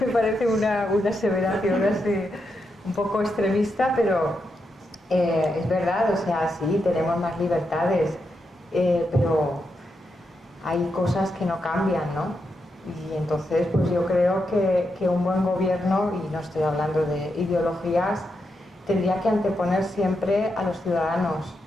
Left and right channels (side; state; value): both; normal; correlation 0.84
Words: parece una aseveración así un poco extremista, pero es verdad, o sea, sí, tenemos más libertades, pero hay cosas que no cambian, ¿no? Y entonces, pues yo creo que un buen gobierno, y no estoy hablando de ideologías, tendría que anteponer siempre a los ciudadanos,